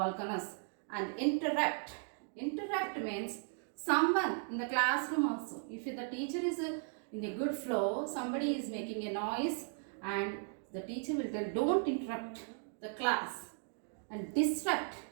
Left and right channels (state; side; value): silent; left; 53 dB below the other